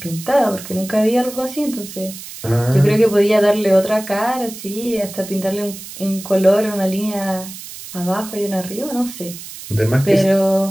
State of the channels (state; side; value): noise; right; hiss, 13 dB below the sound